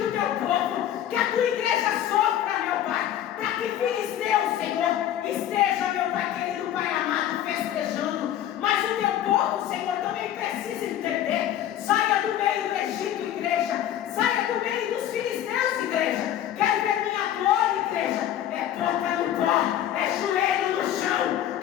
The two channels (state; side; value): quieter; right; 11.3 dB